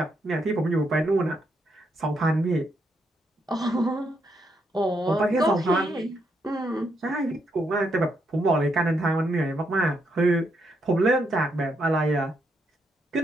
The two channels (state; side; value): normal; both; correlation 0.78